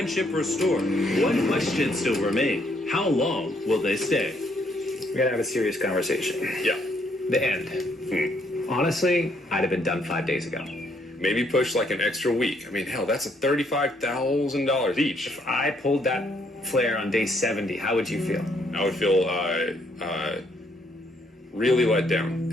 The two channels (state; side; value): normal; both; correlation 0.70